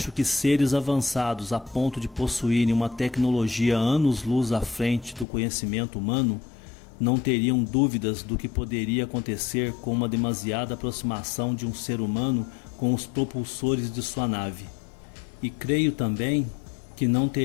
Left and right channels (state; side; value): drops out; right; at 5.2 s